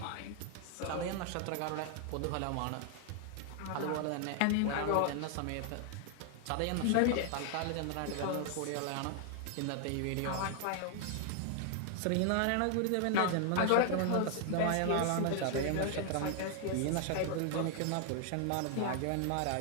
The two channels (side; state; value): both; different; correlation 0.00